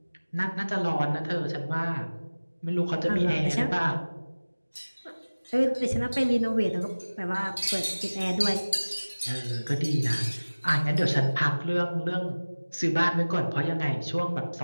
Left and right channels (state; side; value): inverted; both; correlation -1.00